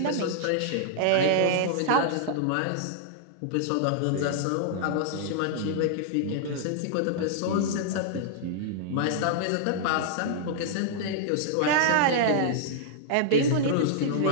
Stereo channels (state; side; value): different; both; correlation -0.01